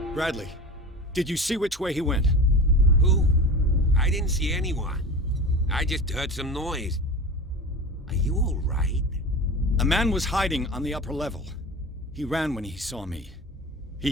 Bradley, did you see which way he went? Who? I didn't see anyone. I just heard some noise. Are you all right? A man was hiding on the upper level. He ran when he saw me.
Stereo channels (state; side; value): normal; both; correlation 0.31